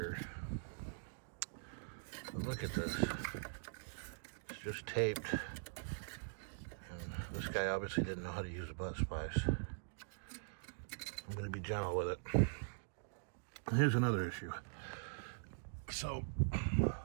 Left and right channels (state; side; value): silent; left; digital silence